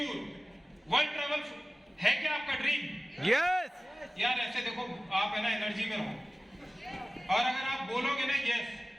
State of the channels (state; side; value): normal; both; correlation 0.96